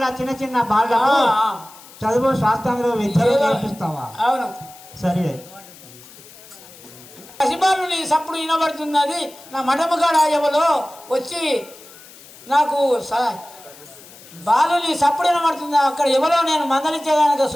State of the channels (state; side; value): noise; left; hiss, 21 dB below the sound